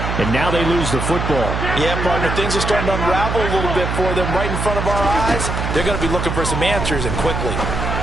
and now they lose the football. Yeah, partner, things are starting to unravel a little bit for them right in front of our eyes. They're going to be looking for some answers, and quickly.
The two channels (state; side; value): noise; right; hum, 2 dB below the sound